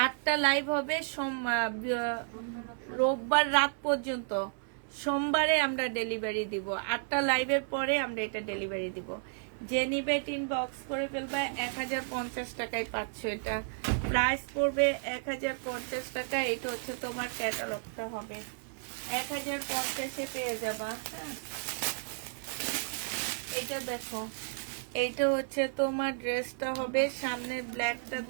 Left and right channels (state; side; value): silent; left; 56 dB below the other